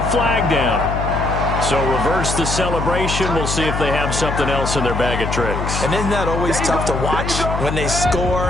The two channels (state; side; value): noise; left; hum, 3 dB below the sound